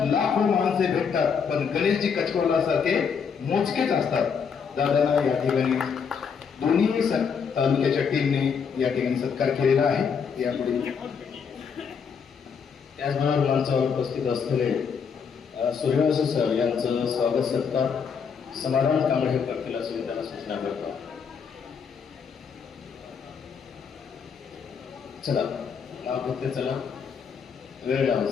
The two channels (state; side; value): quieter; right; 6.4 dB